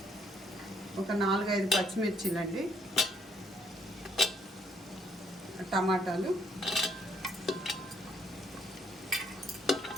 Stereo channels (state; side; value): normal; both; correlation 0.69